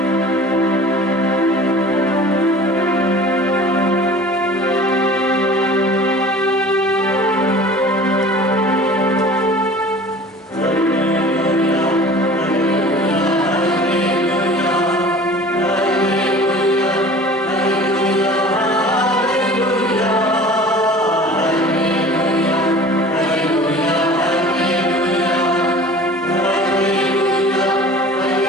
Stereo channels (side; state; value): both; normal; correlation 0.43